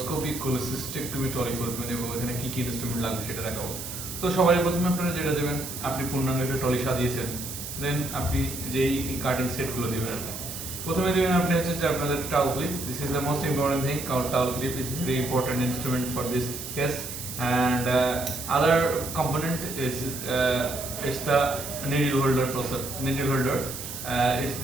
কোলিসিস্টেক্টমি ট্রলি করবেন এবং এখানে কি কি ইনস্ট্রুমেন্ট লাগবে সেটা দেখাবো। তো সবার প্রথমে আপনারা যেটা দেবেন, আপনি পূর্ণাঙ্গ একটা ট্রলি সাজিয়েছেন, দেন আপনি যেই কাটিং সেটগুলো দেবেন, প্রথমে দেবেন আপনি হচ্ছে যে আপনাদের towel clip. This is the most important thing, কারণ towel clip is very important instrument for this case. And other component is it's the needle holder process. Needle holder, it's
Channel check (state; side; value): noise; right; hiss, 8 dB below the sound